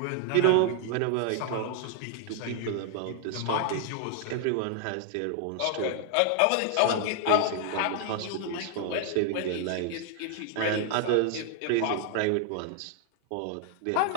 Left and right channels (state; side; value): different; both; correlation 0.00